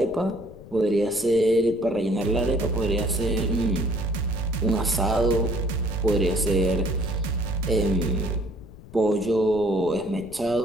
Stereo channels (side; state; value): left; noise; rumble, 18 dB below the sound